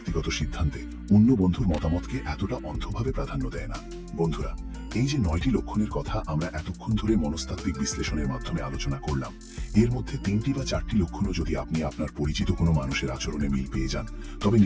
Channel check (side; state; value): both; identical; correlation 1.00